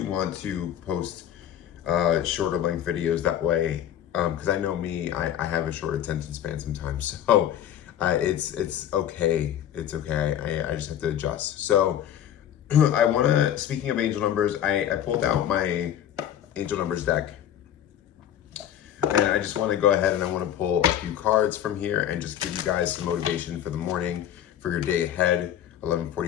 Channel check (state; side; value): quieter; right; 10.6 dB